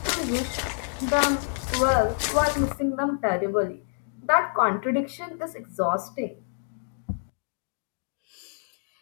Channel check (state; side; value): silent; right; digital silence